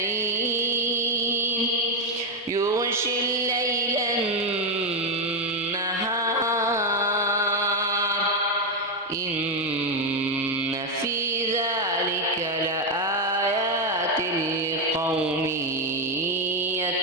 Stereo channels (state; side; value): normal; both; correlation 0.05